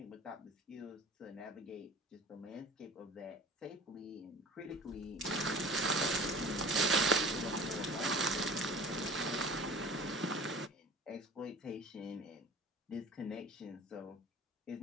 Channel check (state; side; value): normal; both; correlation 0.42